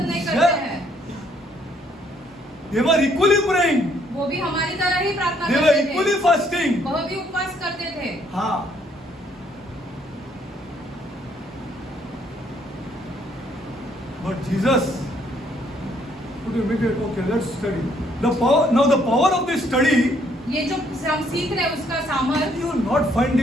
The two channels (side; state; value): both; normal; correlation 0.67